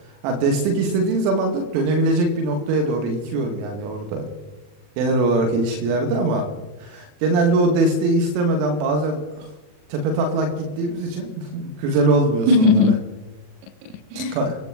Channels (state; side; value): late; left; 40 ms